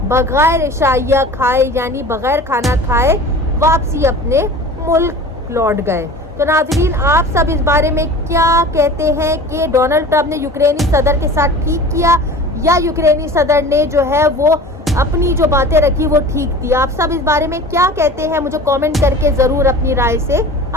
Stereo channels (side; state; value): both; normal; correlation 0.39